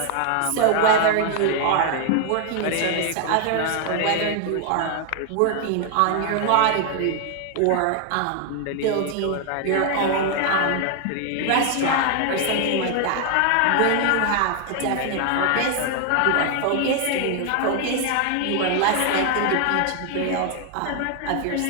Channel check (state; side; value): different; both; correlation 0.00